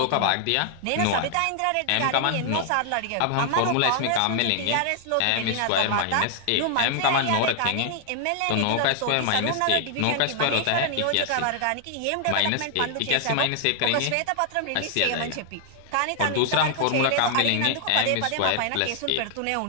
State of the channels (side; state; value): both; different; correlation 0.00